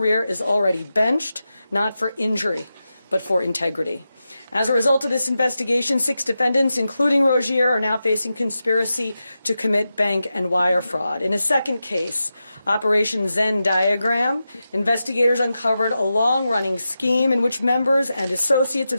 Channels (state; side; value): inverted; both; correlation -0.91